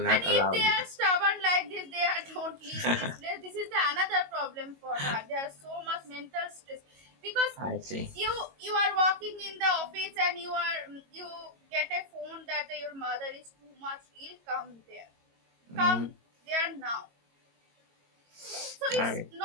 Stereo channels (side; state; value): left; late; 22 ms